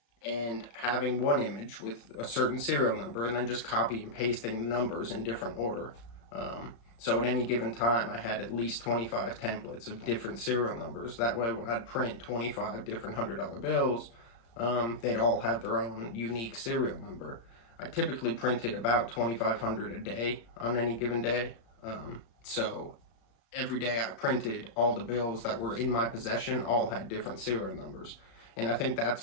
and having one image with a certain serial number, and then just copy and pasting the numbers in different order. So at any given time, I had at least 25 templates of different serial numbers. That way, when I'd print 25 different $100 bills, they'd all have their own unique serial number. I typically printed about 2,500 a day on any given day. So every day I printed, all the bills that were in my possession all had different serial numbers. And I think that's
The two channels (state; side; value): late; right; 35 ms